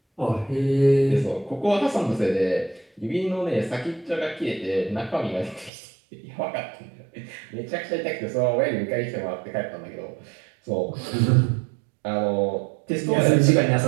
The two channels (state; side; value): drops out; left; at 5.7 s